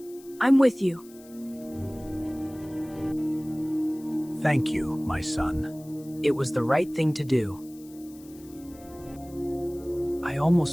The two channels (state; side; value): noise; left; hiss, 23 dB below the sound